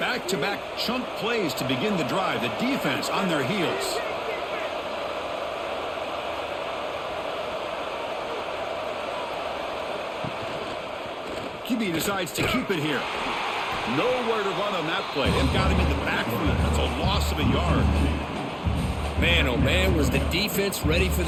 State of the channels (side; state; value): both; identical; correlation 1.00